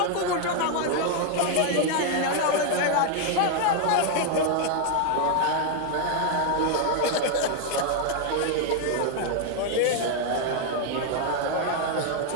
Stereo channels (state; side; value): different; both; correlation 0.00